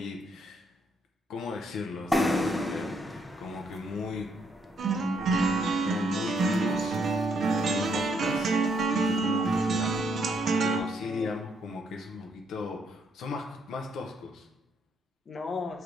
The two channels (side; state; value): both; normal; correlation 0.73